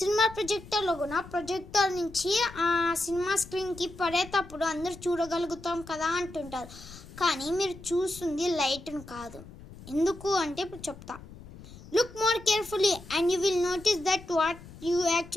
ప్రొజెక్టర్లో కూడా ప్రొజెక్టర్ నుంచి ఆ సినిమా స్క్రీన్కి పడేటప్పుడు అందరూ చూడగలుగుతాం కదా అంటుంటారు. కానీ మీరు చూస్తుంది లైట్ను కాదు. ఎందుకు అంటే ఇప్పుడు చెప్తా. Look more carefully and you will notice that what you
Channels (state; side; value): noise; left; rumble, 17 dB below the sound